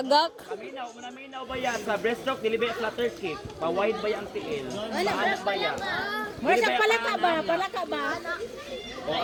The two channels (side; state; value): both; identical; correlation 1.00